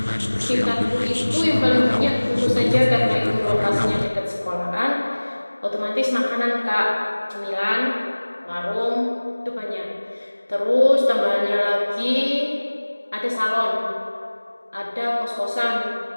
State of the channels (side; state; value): both; inverted; correlation -1.00